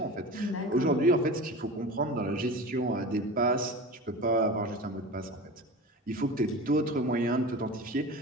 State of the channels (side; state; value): both; normal; correlation 0.32